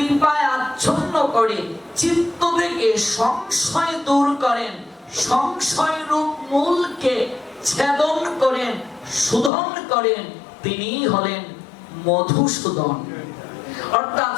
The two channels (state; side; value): drops out; right; at 9.5 s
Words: আচ্ছন্ন করে চিত্ত থেকে সংশয় দূর করেন, সংশয় রূপ মূলকে ছেদন করেন, শোধন করেন, তিনিই হলেন মধুসূদন। অর্থাৎ